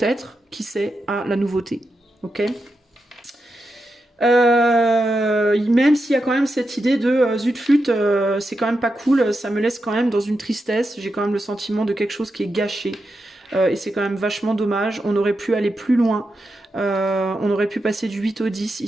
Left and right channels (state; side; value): normal; both; correlation 0.87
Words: qui sait, à la nouveauté. Ok ? Même s'il y a quand même cette idée de zut flûte, c'est quand même pas cool, ça me laisse quand même dans une tristesse, j'ai quand même le sentiment de quelque chose qui est gâché. Et c'est quand même vachement dommage. On aurait pu aller plus loin. On aurait pu passer du 8 au 10,